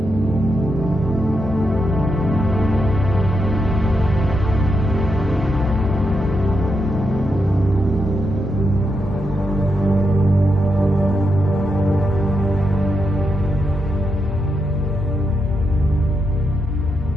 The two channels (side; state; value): both; normal; correlation 0.84